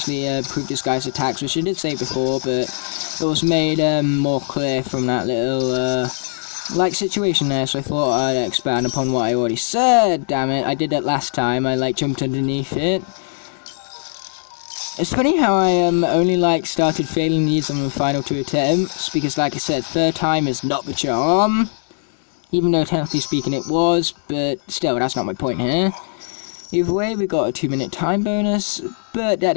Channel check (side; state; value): right; silent; digital silence